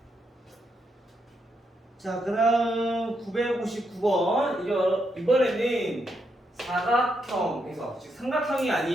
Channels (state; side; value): normal; both; correlation 0.80